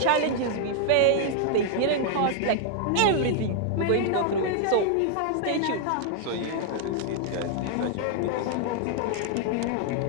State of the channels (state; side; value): different; both; correlation -0.01